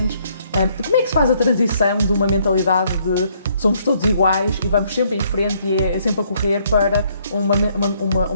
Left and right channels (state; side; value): inverted; both; correlation -0.68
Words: Como é que se faz a transição de uma mentalidade de somos todos iguais e vamos sempre em frente e é sempre a correr para